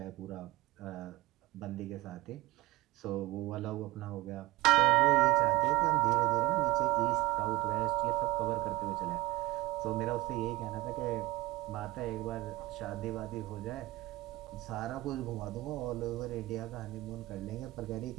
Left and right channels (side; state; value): left; quieter; 18.7 dB